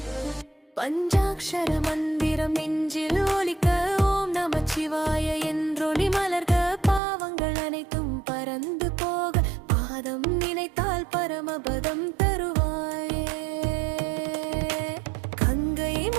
பஞ்சாக்ஷர மந்திரம் நெஞ்சில் ஒலிக்க ஓம் நமச்சிவாய என்றொளி மலர்க, பாவங்கள் அனைத்தும் பறந்து போக பாதம் நினைத்தால் பரமபதம் தருவாயே. கங்கை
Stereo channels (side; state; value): left; drops out; at 7.0 s